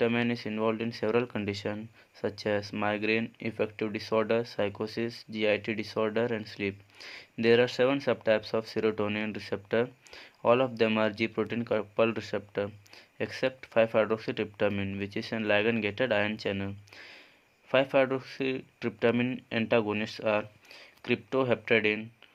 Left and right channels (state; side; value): identical; both; correlation 1.00